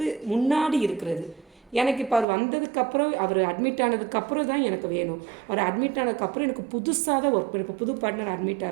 முன்னாடி இருக்கிறது. எனக்கு இப்போ அவர் வந்ததுக்கப்புறம் அவர் அட்மிட் ஆனதுக்கப்புறம் தான் எனக்கு வேணும். அவர் அட்மிட் ஆனதுக்கப்புறம் எனக்கு புதுசாக தான் ஒர்க் பண்ணி, இப்போ புது பார்ட்னர் அட்மிட்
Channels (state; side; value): drops out; left; at 2.2 s